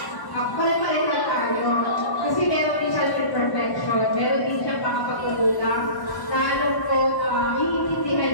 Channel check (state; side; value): late; right; 1.1 ms